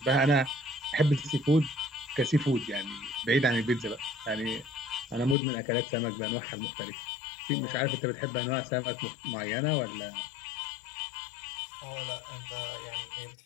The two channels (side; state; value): right; drops out; at 5.4 s